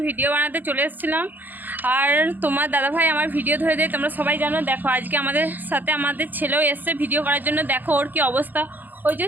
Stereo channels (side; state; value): left; late; 0.087 ms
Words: ভিডিও বানাতে চলে এসেছিলাম। আর তোমার দাদাভাই আমার ভিডিও ধরে দেয়, তোমরা সবাই জানো। দেখো আজকে আমাদের সাথে আমাদের ছেলেও এসছে ভিডিও করার জন্য। দেখো ওর কি অবস্থা, ওই যে